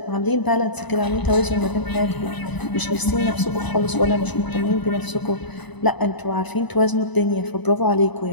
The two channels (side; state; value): right; late; 1.0 ms